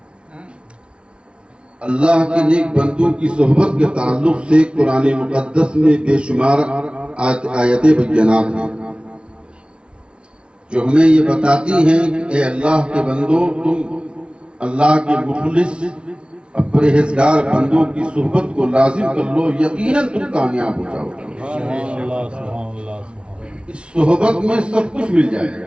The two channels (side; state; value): left; late; 0.057 ms